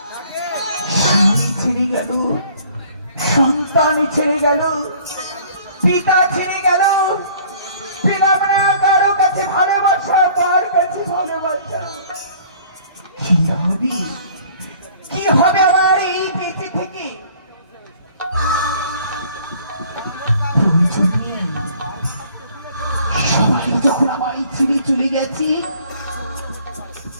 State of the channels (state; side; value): inverted; both; correlation -0.54